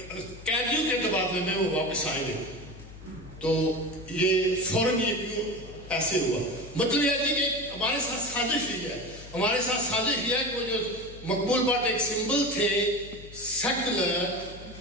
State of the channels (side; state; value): left; noise; hum, 17 dB below the sound